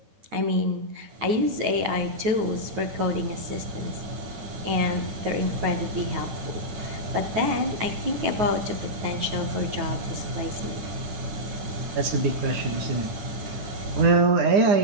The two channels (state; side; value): late; left; 9.4 ms